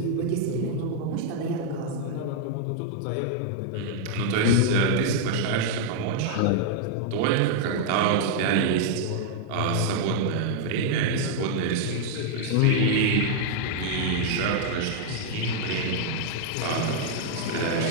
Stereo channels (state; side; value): different; both; correlation -0.01